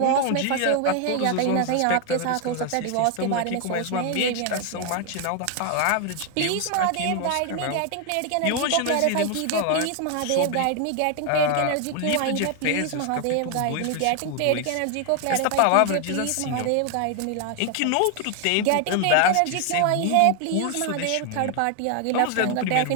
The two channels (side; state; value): both; different; correlation 0.00